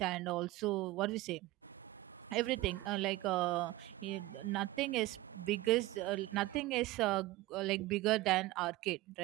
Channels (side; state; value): left; quieter; 18.0 dB